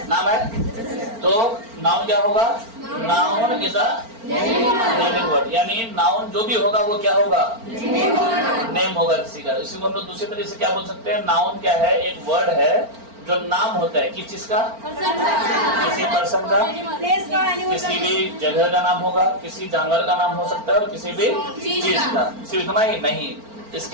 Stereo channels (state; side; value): late; left; 4.4 ms